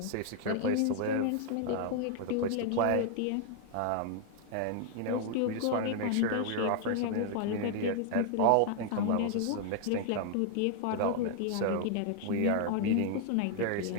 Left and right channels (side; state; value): both; different; correlation 0.00